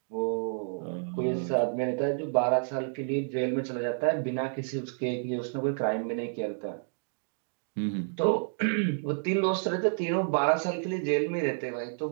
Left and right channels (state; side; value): silent; left; digital silence